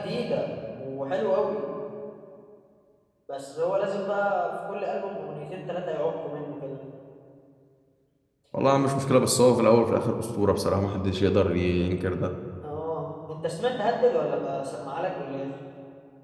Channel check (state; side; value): identical; both; correlation 1.00